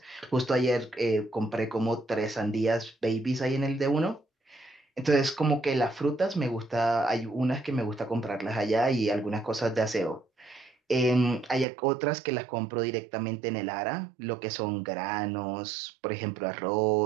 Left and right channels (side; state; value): left; drops out; at 11.7 s